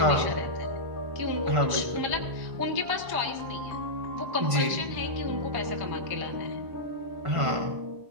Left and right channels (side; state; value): left; late; 1.5 ms